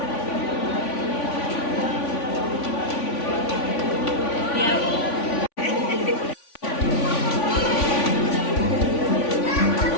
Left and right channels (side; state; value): right; late; 3.5 ms